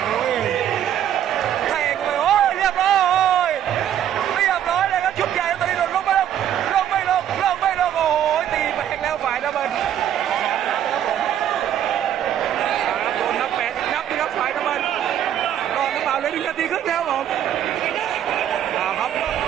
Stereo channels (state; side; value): quieter; left; 10.4 dB